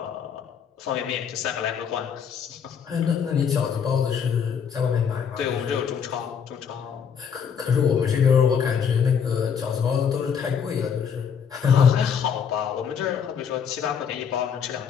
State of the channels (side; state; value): right; quieter; 7.2 dB